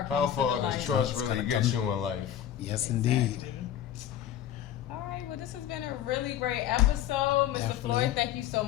How far does trust really get you in life? Yes, indeed. All right, well, this has been a really great episode, Mr. Definitely. Floyd. Thank you so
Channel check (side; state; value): right; quieter; 11.0 dB